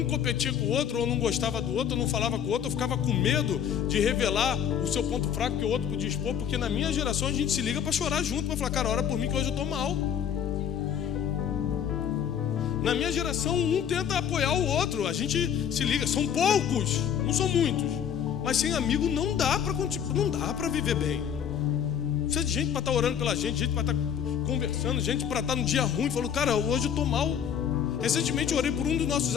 competia com o outro, ou não gostava do outro, ou não falava com o outro, ou ficava com medo de revelar o seu ponto fraco que o outro podia expor. Porque na minha geração a gente se liga para chorar junto, para falar, cara, ora por mim que hoje eu estou mal. Na minha geração, um tenta apoiar o outro. A gente se liga, são poucos, não são muitos. Mas sem amigo não dá para viver bem. Precisa de gente para estar orando pela gente para estar conversando, gente para estar no dia ruim. Falou, cara, hoje eu estou mal. Recentemente eu orei por um dos nossos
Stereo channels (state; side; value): quieter; right; 8.7 dB